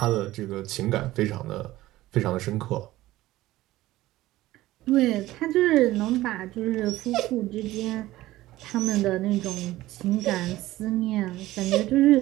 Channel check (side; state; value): left; quieter; 16.5 dB